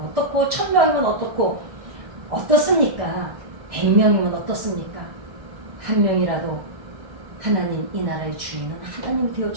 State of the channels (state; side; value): late; left; 1.6 ms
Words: 어떻고 1000명이면 어떻고 어떻습니까? 100명이면 어떻습니까? 한 명이라도 하나님 이 나라의 주인은 하나님 되어